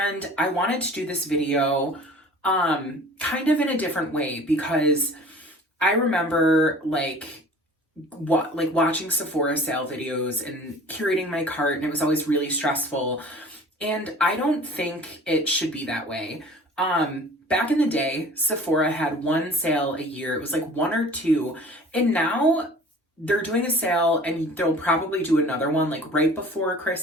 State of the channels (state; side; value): normal; both; correlation 0.45